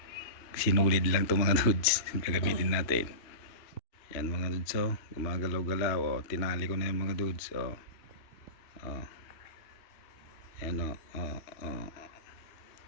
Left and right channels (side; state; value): right; late; 2.8 ms